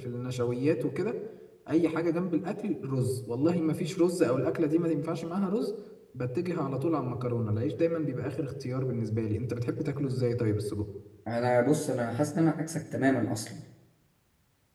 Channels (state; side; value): identical; both; correlation 1.00